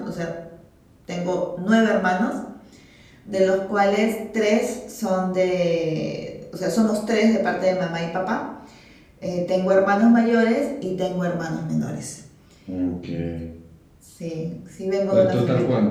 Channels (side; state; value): both; identical; correlation 1.00